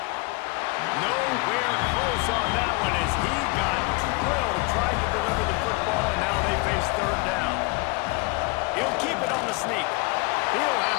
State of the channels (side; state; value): right; quieter; 26.4 dB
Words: Nowhere close on that one as he got drilled trying to deliver the football, and now they face 3rd down. He'll keep it on the sneak. He'll